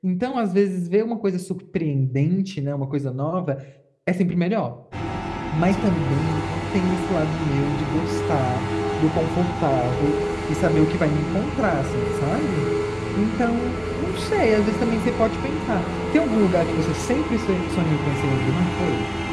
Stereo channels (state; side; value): identical; both; correlation 1.00